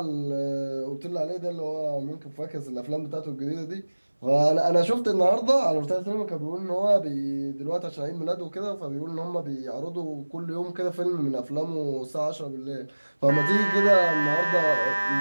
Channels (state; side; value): inverted; both; correlation -1.00